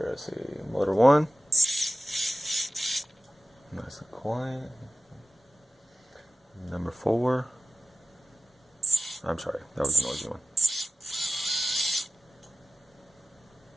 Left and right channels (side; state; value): both; normal; correlation 0.94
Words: Let's see. Motor 1. Nice and quiet. Number 4. I'm sorry, that was a noisy one.